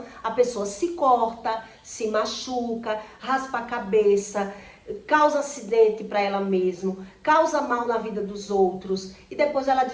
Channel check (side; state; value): both; identical; correlation 1.00